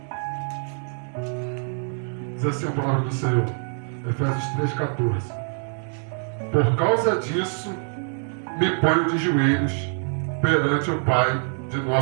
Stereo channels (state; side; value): silent; left; 57 dB below the other